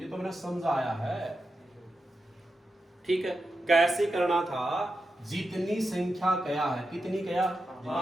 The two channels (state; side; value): normal; both; correlation 0.89